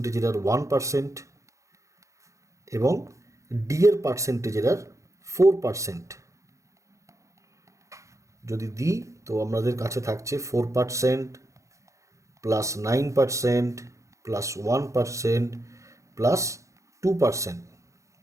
এরার 1%, এবং ডি এর পার্সেন্টেজ এরার 4%। যদি দিই তো আমাদের কাছে থাকছে 4% প্লাস 9% প্লাস 1% প্লাস 2%,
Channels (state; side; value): late; left; 0.15 ms